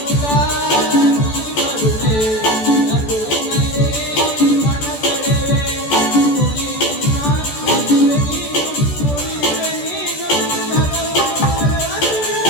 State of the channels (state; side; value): late; right; 14 ms